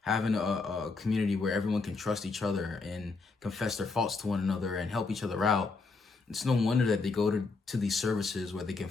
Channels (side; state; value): right; quieter; 4.1 dB